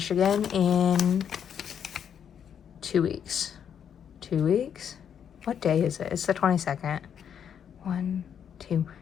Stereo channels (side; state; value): right; quieter; 8.3 dB